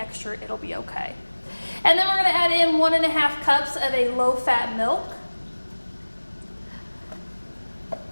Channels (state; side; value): inverted; both; correlation -1.00